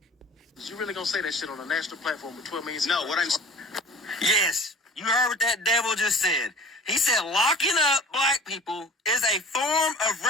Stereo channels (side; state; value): both; normal; correlation 0.44